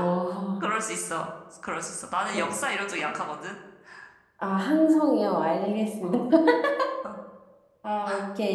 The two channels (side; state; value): both; identical; correlation 1.00